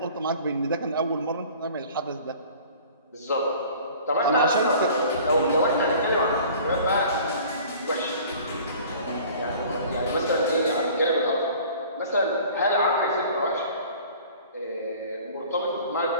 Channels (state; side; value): inverted; both; correlation -0.47